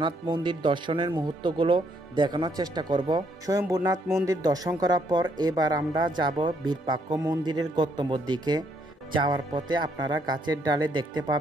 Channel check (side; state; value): both; normal; correlation 0.71